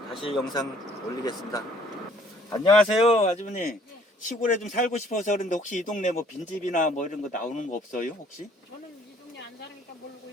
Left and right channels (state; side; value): normal; both; correlation 0.59